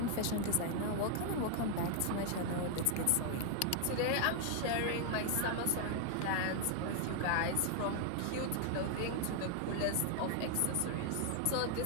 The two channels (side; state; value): both; different; correlation 0.00